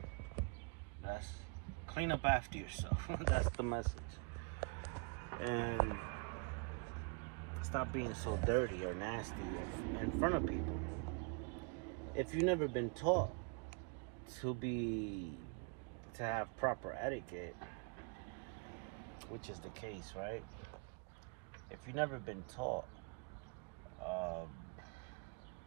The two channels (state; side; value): quieter; left; 35.6 dB